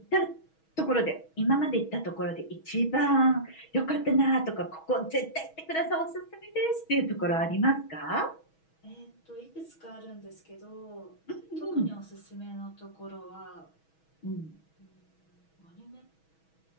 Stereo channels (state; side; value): late; right; 6.2 ms